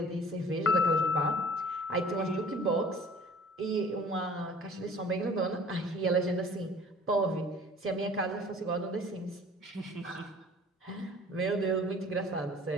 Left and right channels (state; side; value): normal; both; correlation 0.49